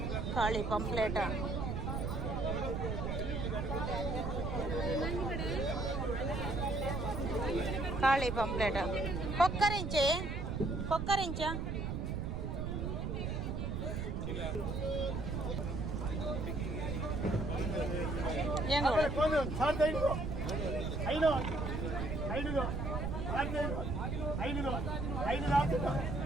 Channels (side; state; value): right; noise; rumble, 2 dB below the sound